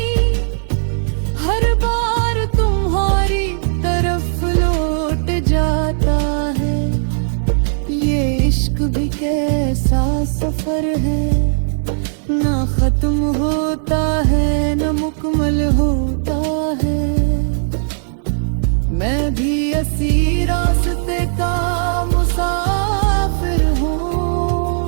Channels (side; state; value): left; silent; digital silence